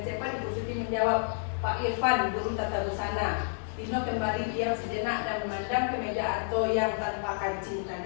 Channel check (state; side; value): silent; right; digital silence